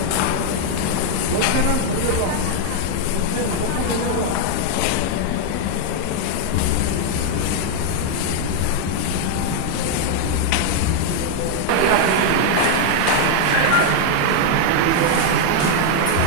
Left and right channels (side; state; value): both; different; correlation 0.00